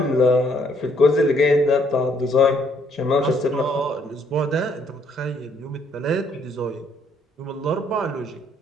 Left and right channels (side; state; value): both; normal; correlation 0.67